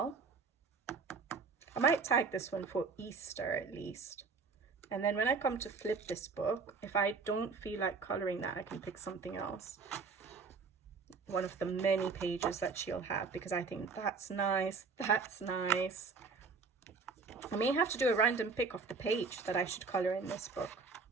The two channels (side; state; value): left; quieter; 4.6 dB